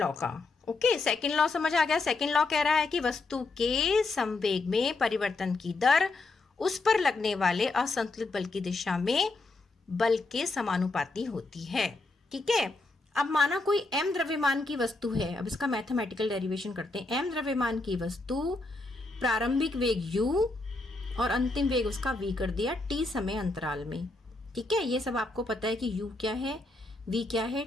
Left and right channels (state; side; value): quieter; right; 3.3 dB